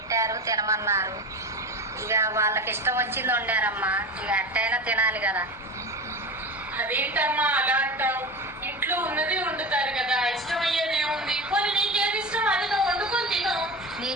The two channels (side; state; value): both; normal; correlation 0.27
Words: తినమన్నారు. ఇక వాళ్ళకి ఇష్టం వచ్చింది వండారమ్మా, ఇక అట్టయినా తినాలి కదా. అదేంటమ్మా అలా అంటావు? ఇంట్లో ఉన్నది వండుతారు కదా, ఇష్టమయ్యేది ఏముంది? పోనీ నీకేది ఇష్టం అది నువ్వు వండుకొని తిను.